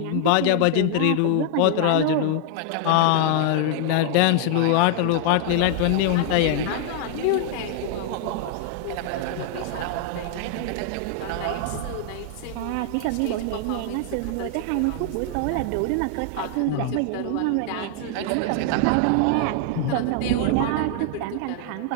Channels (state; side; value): different; both; correlation 0.00